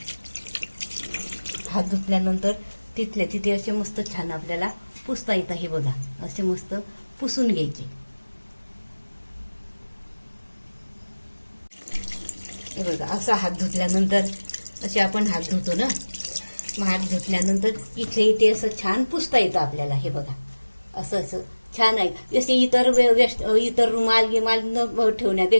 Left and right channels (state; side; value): inverted; both; correlation -1.00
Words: हात धुतल्यानंतर तिथल्या तिथे असे मस्त छान आपल्याला पुसता येतं. हे बघा, असे मस्त पुसून घ्यायचे. हे बघा, असा हात धुतल्यानंतर असे आपण हात धुतो ना, मग हात धुतल्यानंतर इथे असं छान पुसता येतं आपल्याला. हे बघा, असं असं छान आहे. जसे इतर रुमाल गिमाल न